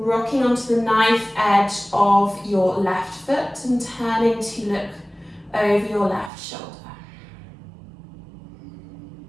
onto the knife edge of your left foot and turning to look over your left shoulder.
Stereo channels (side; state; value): left; drops out; at 6.3 s